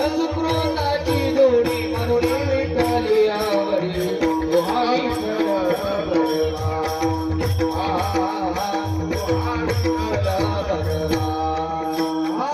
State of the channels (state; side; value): identical; both; correlation 1.00